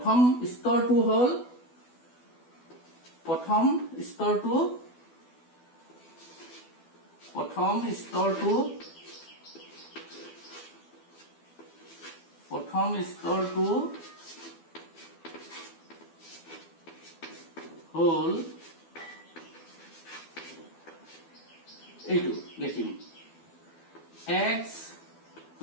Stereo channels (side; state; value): right; late; 12 ms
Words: স্তৰটো হল প্ৰথম স্তৰটো হল এইটো লিখিম x